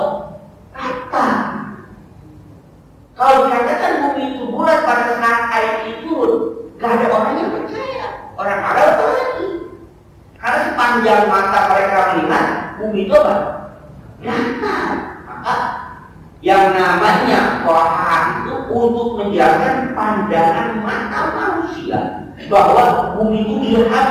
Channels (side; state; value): both; identical; correlation 1.00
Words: Rata. Kalau dikatakan bumi itu bulat pada saat ayat itu, tidak ada orang yang percaya. Orang Arab lagi. Karena sepanjang mata mereka melihat bumi itu apa? Rata. Maka yang namanya Quran itu untuk menjelaskan pandangan mata manusia bahwa bumi itu